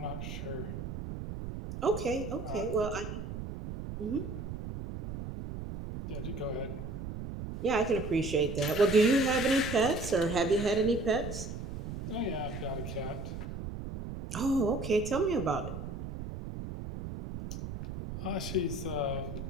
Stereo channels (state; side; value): noise; right; rumble, 7 dB below the sound